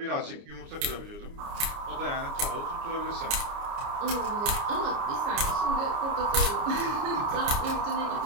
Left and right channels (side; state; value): left; late; 29 ms